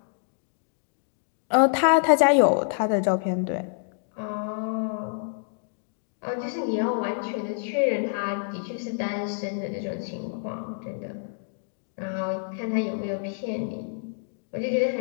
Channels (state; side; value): silent; right; digital silence